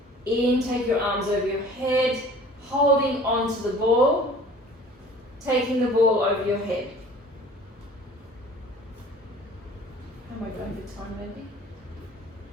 In, take your arms over your head, holding onto the ball, taking the ball over your head. How am I going for time, maybe?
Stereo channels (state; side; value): normal; both; correlation 0.47